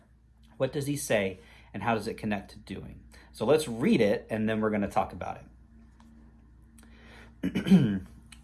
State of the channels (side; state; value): both; identical; correlation 1.00